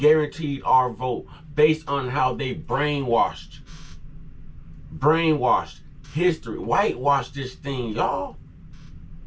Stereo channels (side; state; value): both; identical; correlation 1.00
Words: our vote based on how they brainwashed history, whitewashed this thing, y'all.